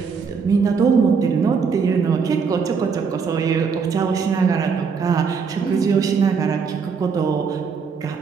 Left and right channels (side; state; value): left; quieter; 5.7 dB